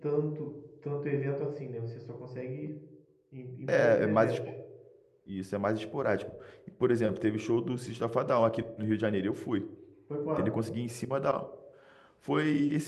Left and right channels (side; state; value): both; identical; correlation 1.00